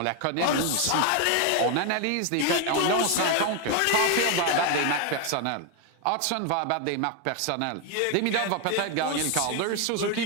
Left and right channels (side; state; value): both; different; correlation 0.01